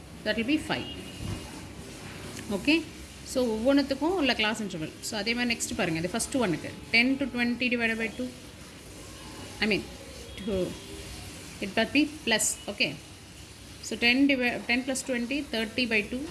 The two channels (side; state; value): both; identical; correlation 1.00